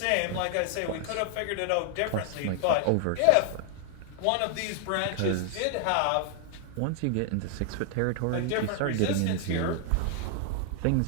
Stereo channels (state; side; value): different; both; correlation 0.00